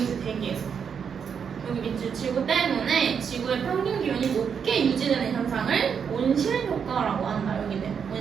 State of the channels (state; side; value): quieter; left; 7.0 dB